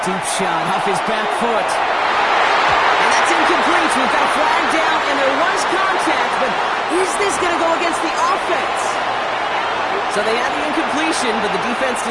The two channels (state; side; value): identical; both; correlation 1.00